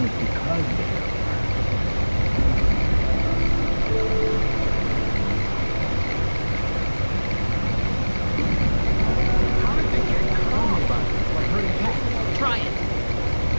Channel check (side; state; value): both; inverted; correlation -1.00